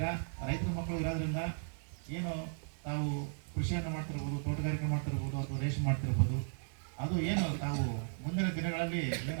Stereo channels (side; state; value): left; silent; digital silence